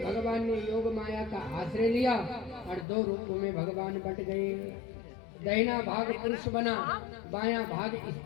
भगवान ने योग माया का आश्रय लिया और 2 रूपों में भगवान बट गए। दाहिना भाग पुरुष बना, बायां भाग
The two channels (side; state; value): right; drops out; at 2.9 s